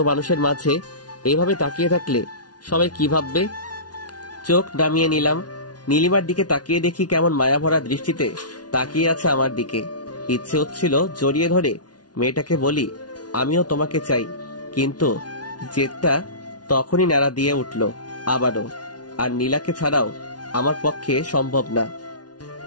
মানুষের মাঝে এইভাবে তাকিয়ে থাকলে সবাই কি ভাববে? চোখ নামিয়ে নিলাম। নীলিমার দিকে তাকিয়ে দেখি কেমন মায়া ভরা দৃষ্টিতে তাকিয়ে আছে আমার দিকে। ইচ্ছে হচ্ছিল জড়িয়ে ধরে মেয়েটাকে বলি, আমিও তোমাকে চাই, কিন্তু জেদটা তখনই নাড়া দিয়ে উঠল আবারও। আর নীলাকে ছাড়াও আমার পক্ষে সম্ভব না।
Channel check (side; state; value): right; late; 0.69 ms